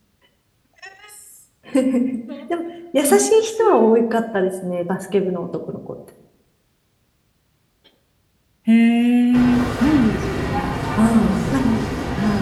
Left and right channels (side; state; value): both; identical; correlation 1.00